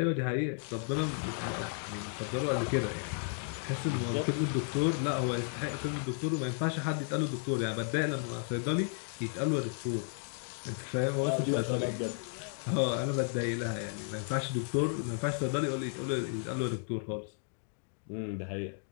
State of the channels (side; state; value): right; silent; 55 dB below the other